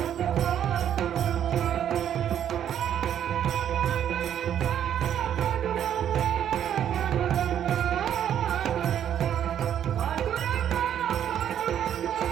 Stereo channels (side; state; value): left; quieter; 9.9 dB